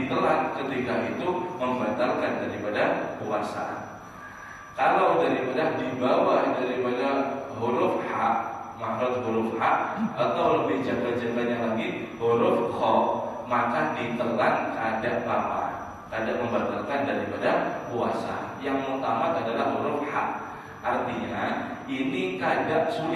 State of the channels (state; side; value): identical; both; correlation 1.00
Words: ketika itu membatalkan daripada puasa. Kalau daripada di bawah daripada huruf H, makhraj huruf H, atau lebih jaga-jaganya lagi huruf Kha, maka ditelan kada apa, kada membatalkan daripada puasa. Yang utama adalah huruf H. Artinya ini kada